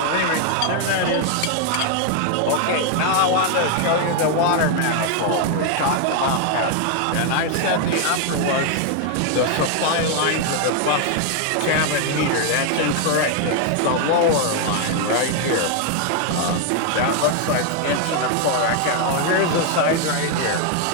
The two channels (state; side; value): different; both; correlation 0.00